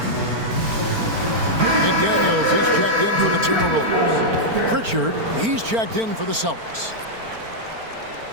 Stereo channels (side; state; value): left; late; 4.4 ms